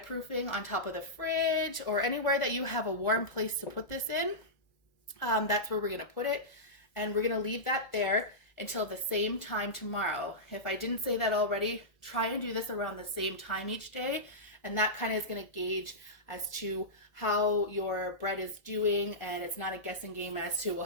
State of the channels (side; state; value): right; late; 1.4 ms